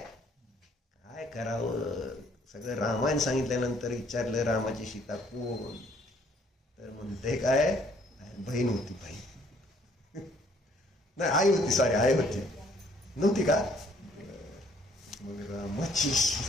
काय करावं? सगळं रामायण सांगितल्यानंतर विचारलं रामाची सीता कोण? तर म्हणते काय? बहीण होती. बहीण नाही, आई होती. सॉरी, आई होती. नव्हती का? मग रामाची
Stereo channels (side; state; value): both; normal; correlation 0.63